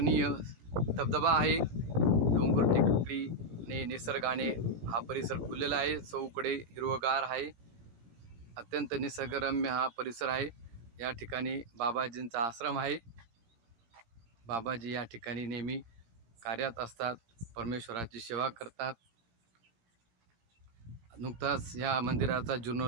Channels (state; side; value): late; left; 17 ms